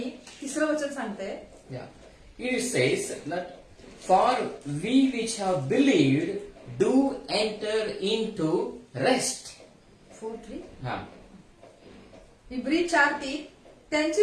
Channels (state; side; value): identical; both; correlation 1.00